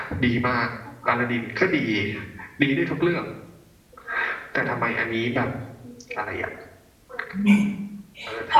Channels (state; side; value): identical; both; correlation 1.00